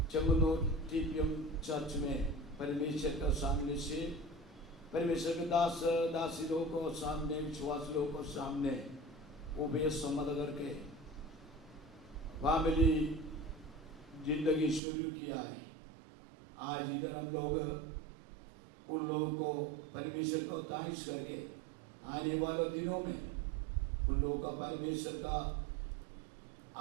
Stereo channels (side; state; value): left; drops out; at 14.8 s